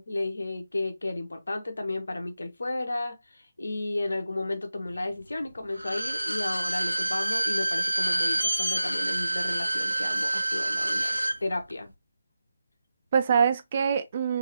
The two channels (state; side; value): inverted; both; correlation -0.91